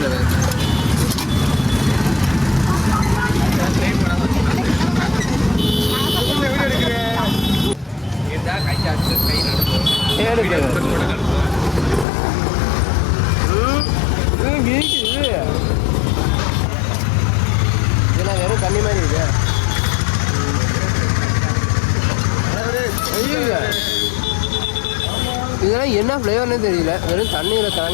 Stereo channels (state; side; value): drops out; right; at 12.1 s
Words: இதெல்லாம் வெறும் தண்ணி மாதிரி இருக்கு. இதெல்லாம் என்ன ஃப்ளேவர்னே தெரியல. வெறும் தண்ணியில்